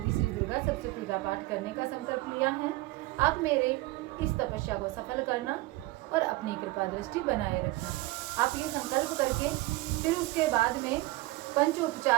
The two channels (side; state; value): left; quieter; 19.8 dB